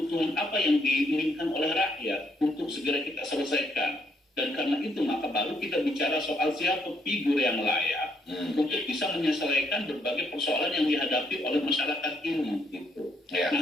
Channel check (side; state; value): both; normal; correlation 0.72